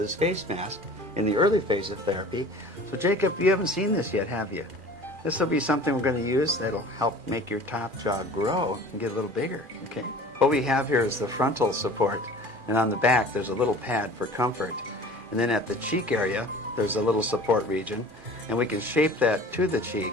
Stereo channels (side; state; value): left; late; 2.4 ms